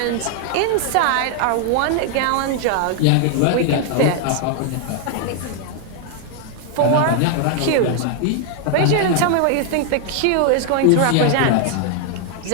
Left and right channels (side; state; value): both; different; correlation 0.00